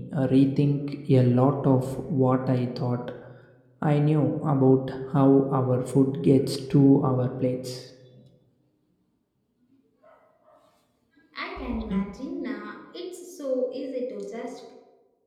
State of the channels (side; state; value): both; identical; correlation 1.00